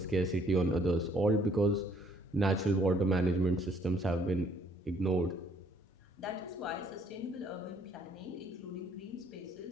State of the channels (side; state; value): both; normal; correlation 0.64